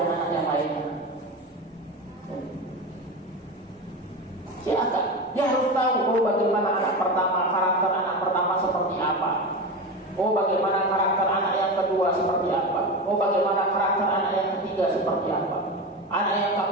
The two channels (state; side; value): normal; both; correlation 0.23